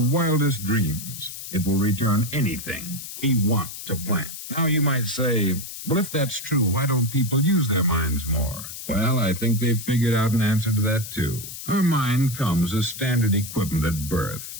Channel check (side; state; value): left; noise; hiss, 10 dB below the sound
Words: dreams. It will return anything we want to plant. Now, you might say, well, if that's true, why don't people use their minds more? Well, I think they've figured out an answer to that, too. Our mind comes as standard equipment at birth.